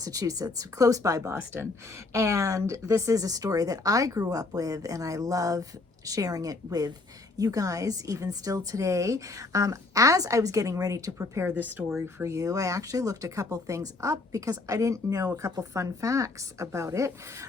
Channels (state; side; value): quieter; right; 3.4 dB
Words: close by Boston. And this is a story that I grew up with, and I love sharing it with you guys, even still today. As I was getting ready to prepare this story for you, I actually looked a couple things up because I didn't know a couple fun facts about it.